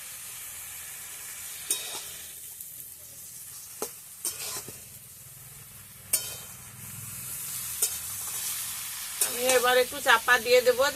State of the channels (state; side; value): identical; both; correlation 1.00